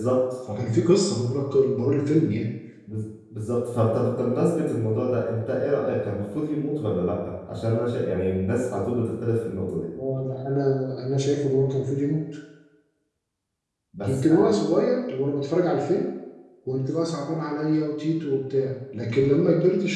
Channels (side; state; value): both; identical; correlation 1.00